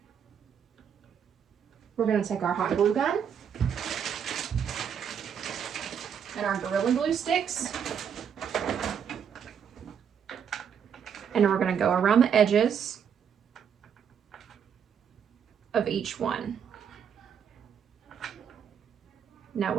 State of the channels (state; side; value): quieter; left; 7.8 dB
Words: we're going to take our hot glue gun and our Gorilla Glue sticks, and we're going to go around the edges of each one. Now